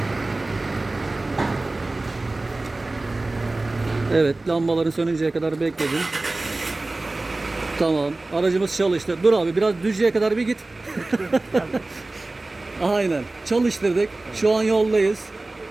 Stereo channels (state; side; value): quieter; left; 3.0 dB